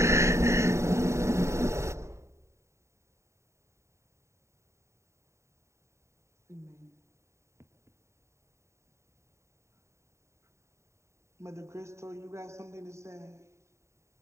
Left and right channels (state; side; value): late; left; 0.14 ms